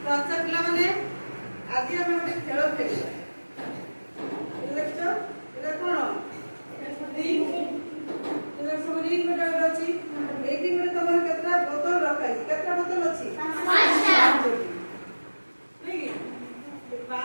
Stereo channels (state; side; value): inverted; both; correlation -1.00